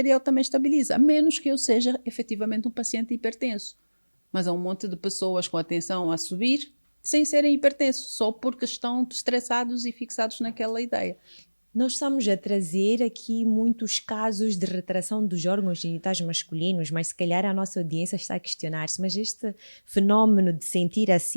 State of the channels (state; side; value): inverted; both; correlation -1.00